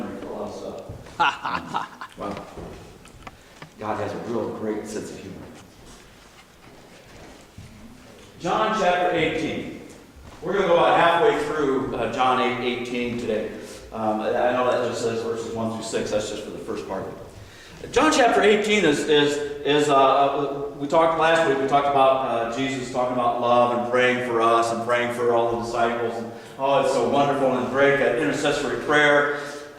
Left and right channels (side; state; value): both; identical; correlation 1.00